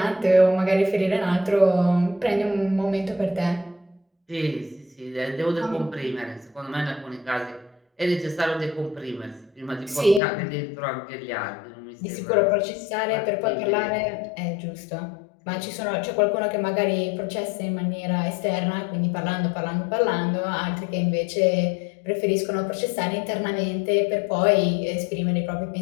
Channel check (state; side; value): drops out; right; at 10.2 s